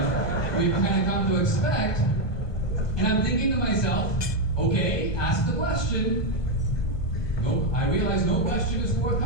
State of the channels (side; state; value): right; late; 1.2 ms